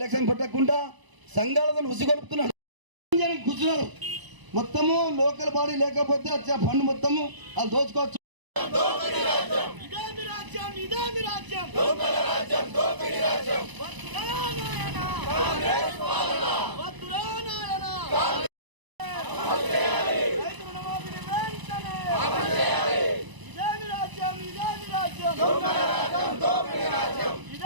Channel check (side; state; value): left; late; 1.0 ms